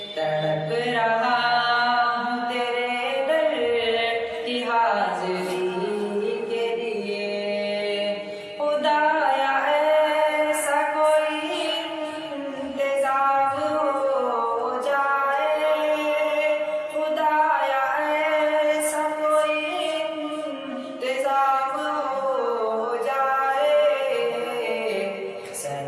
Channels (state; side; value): identical; both; correlation 1.00